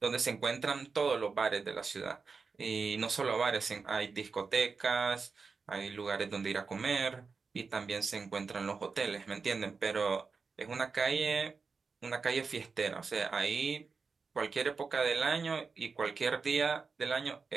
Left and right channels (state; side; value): quieter; left; 4.9 dB